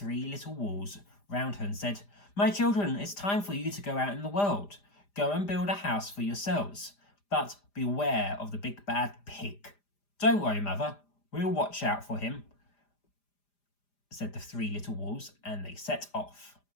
little wolves round her and said, "My children, it's time for you to go out in the world. Go and build a house for yourselves. But beware of the big bad pig." "Don't worry, mother, we'll watch out for him," said the three little wolves, and they set off.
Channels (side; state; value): right; late; 5.0 ms